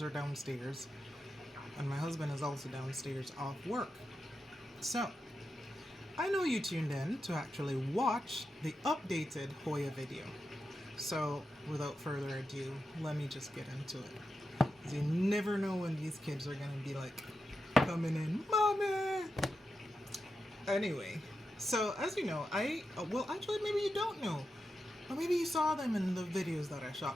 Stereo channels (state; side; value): normal; both; correlation 0.88